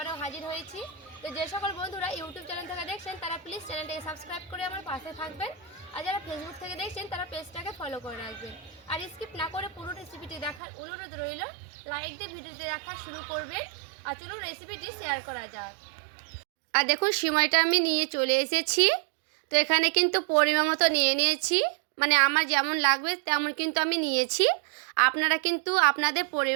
হাজির হয়েছি। তো যে সকল বন্ধুরা ইউটিউব চ্যানেল থেকে দেখছেন তারা প্লিজ চ্যানেলটাকে সাবস্ক্রাইব করে আমার পাশে থাকবেন, আর যারা ফেসবুক থেকে দেখছেন তারা পেজটাকে ফলো করে রাখবেন। আর স্কিপ না করে পুরো রেসিপিটি দেখার অনুরোধ রইল। লাইক দিয়ে ভিডিওটি দেখা শুরু করবেন, আর চলুন রেসিপিটি শেয়ার করা যাক। আর দেখুন সিমইটা আমি নিয়ে চলে এসেছি। তো এখানে কিন্তু পরিমাণ মতো নিয়ে নিয়েছি, মানে আমার যেমন লাগবে তেমন কিন্তু আমি নিয়েছি। আপনারা কিন্তু আপনাদের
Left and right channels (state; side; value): drops out; left; at 10.6 s